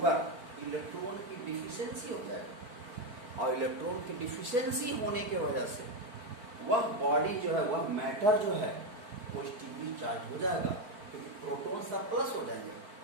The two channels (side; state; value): left; late; 4.4 ms